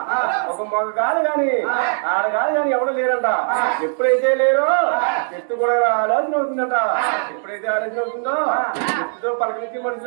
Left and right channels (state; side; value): silent; left; digital silence